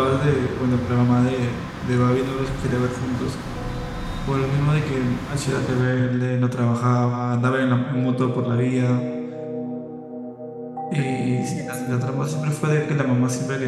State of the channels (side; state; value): both; identical; correlation 1.00